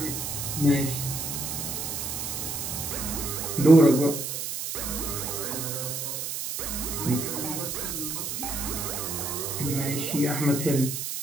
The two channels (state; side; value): noise; right; hiss, 4 dB below the sound